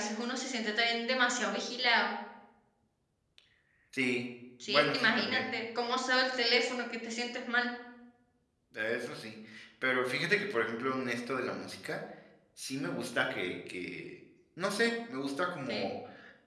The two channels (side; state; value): both; identical; correlation 1.00